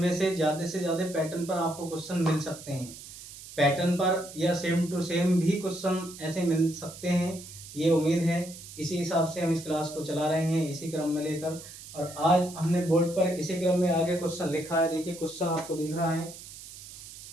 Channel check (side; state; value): right; noise; hiss, 15 dB below the sound